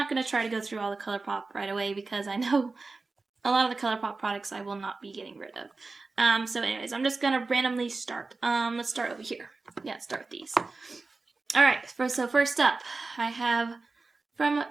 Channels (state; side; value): quieter; left; 3.8 dB